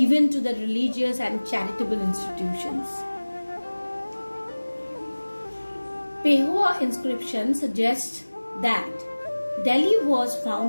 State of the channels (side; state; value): both; inverted; correlation -1.00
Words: to the religious and charitable institutions. Pehua inscription suggests that Delhi was